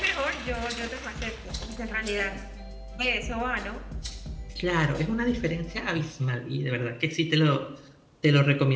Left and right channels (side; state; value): both; identical; correlation 1.00